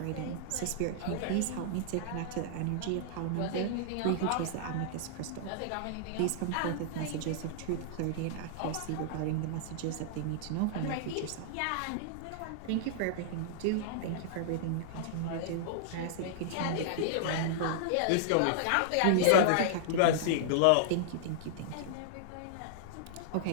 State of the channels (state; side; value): different; both; correlation -0.01